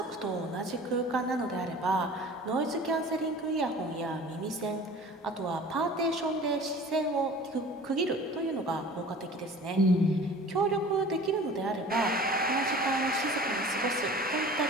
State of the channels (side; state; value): both; normal; correlation 0.43